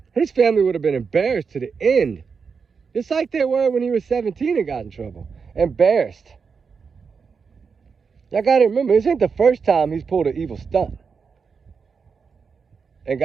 His family would have been embarrassed to the end. Just like they were when he was 17 and got in trouble. Embarrassed. Y'all got to remember, this ain't the first time he's pulled an evil stunt. And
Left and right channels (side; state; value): left; quieter; 5.6 dB